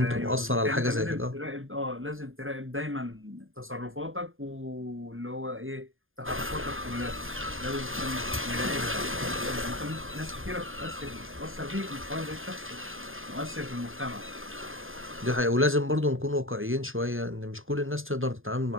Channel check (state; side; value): late; left; 0.59 ms